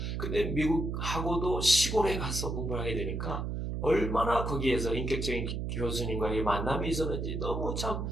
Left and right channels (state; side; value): noise; right; hum, 3 dB below the sound